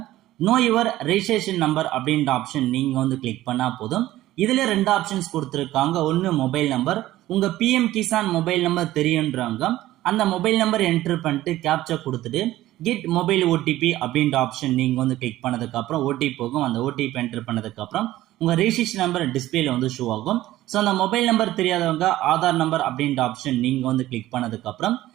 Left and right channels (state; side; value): quieter; left; 15.3 dB